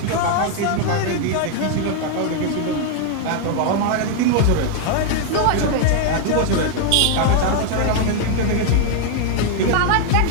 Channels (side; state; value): both; different; correlation 0.00